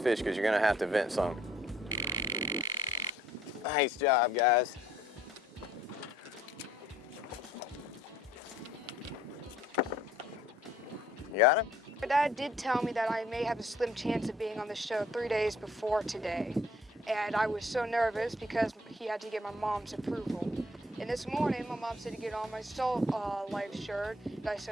because you're gonna have to vent some. Nice job, guys. You got him? My dad did tell me that I may have a slim chance of being on the show 3 days before today. And I was so nervous because he had to get my mom's approval. And this morning, my mom said to get on my Salt Life shirt, and I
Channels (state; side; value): normal; both; correlation 0.61